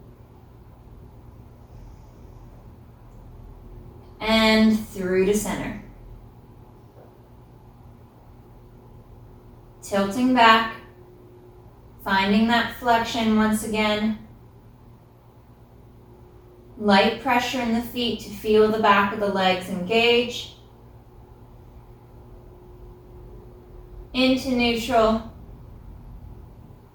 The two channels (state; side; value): identical; both; correlation 1.00